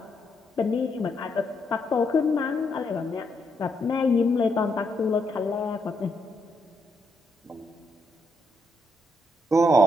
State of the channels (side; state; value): both; normal; correlation 0.78